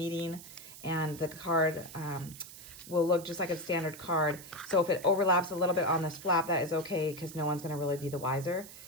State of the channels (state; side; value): noise; right; hiss, 15 dB below the sound